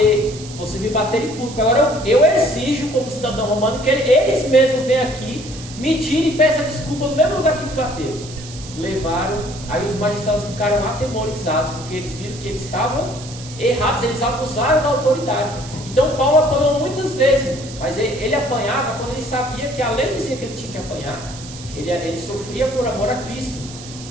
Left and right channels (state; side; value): noise; right; hiss, 15 dB below the sound